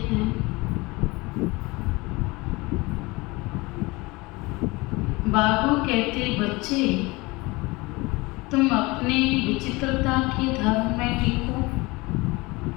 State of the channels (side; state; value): right; quieter; 23.6 dB